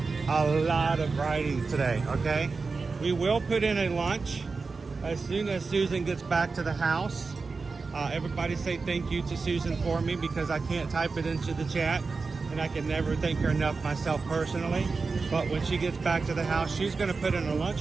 a lot of riding today, okay? We will put in a lunch as soon as Susan gets back to the house. Everybody say thank you to Susan for me because I can't type it into the chat and I can never thank her enough myself personally. But when she gets back to the house, she's going to put in a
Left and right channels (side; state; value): left; quieter; 4.3 dB